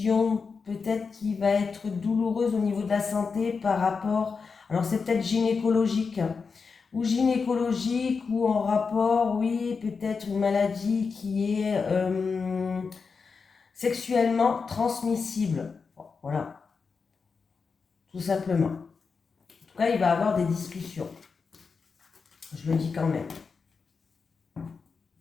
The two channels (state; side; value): quieter; right; 5.1 dB